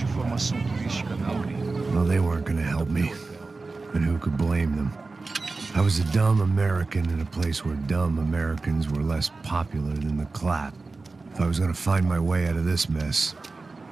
informação turística, não, gringo. Well, they weren't gonna help me. And who could blame them? I was a dumb American in a place where dumb Americans were less popular than the clap. If I was gonna find my way out of this mess,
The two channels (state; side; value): quieter; left; 3.8 dB